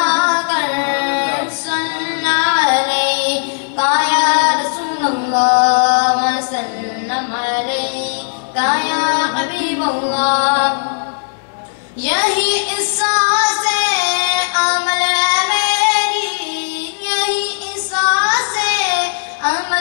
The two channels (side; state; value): right; silent; 69 dB below the other